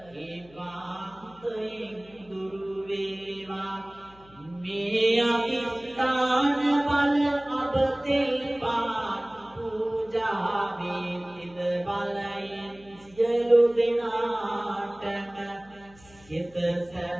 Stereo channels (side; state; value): left; noise; hum, 25 dB below the sound